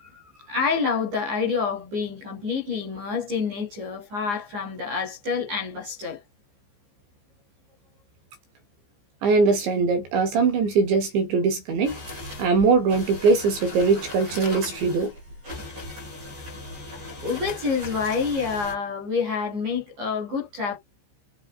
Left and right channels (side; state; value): left; late; 15 ms